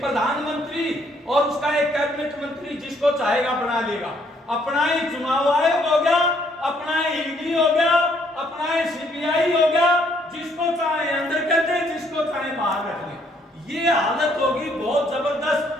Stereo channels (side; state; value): both; normal; correlation 0.67